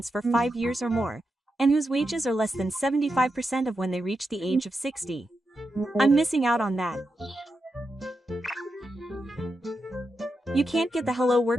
for 5 years or more, and whose wages are less than 75% of when they reach the age of 60. I'm missing out on that. You can't get the Hello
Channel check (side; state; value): both; normal; correlation 0.87